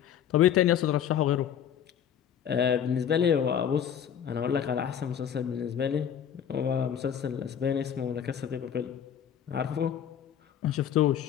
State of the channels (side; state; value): right; quieter; 9.0 dB